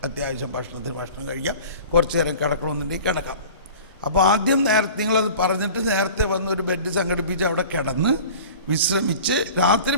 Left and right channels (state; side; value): inverted; both; correlation -0.41